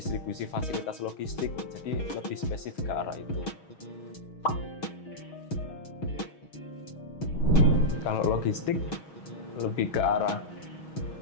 fasilitas logistik, jadi lebih spesifik ke arah itu. Kalau logistik lebih ke arah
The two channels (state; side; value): late; right; 6.3 ms